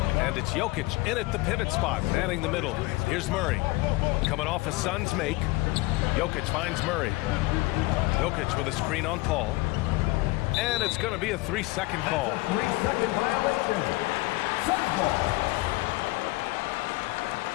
And it's Jokic in at the pivot spot, manning the middle. Here's Murray. Coming off a Suns make. Jokic finds Murray. Jokic with a screen on Paul. And it's going to be a 3-second call. That's a 3-second violation. Suns ball.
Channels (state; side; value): quieter; right; 21.1 dB